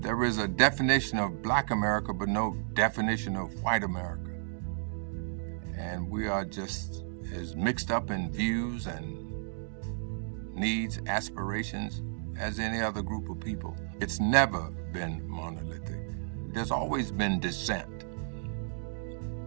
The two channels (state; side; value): silent; left; digital silence